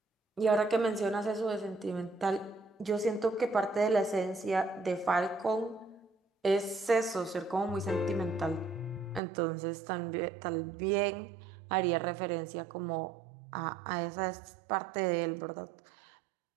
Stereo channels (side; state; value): left; drops out; at 9.2 s